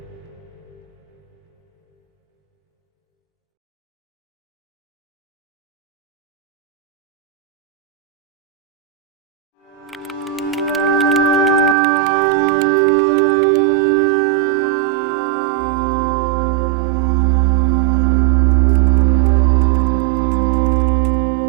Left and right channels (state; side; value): drops out; left; at 11.8 s